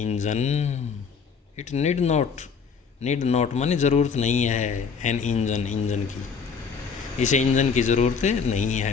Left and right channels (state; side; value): quieter; right; 5.8 dB